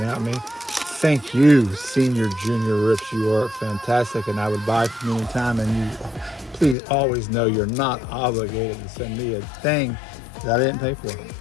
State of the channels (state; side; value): drops out; right; at 6.8 s